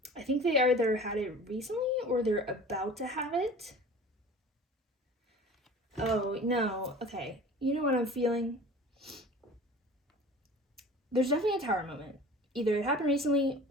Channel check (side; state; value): both; normal; correlation 0.42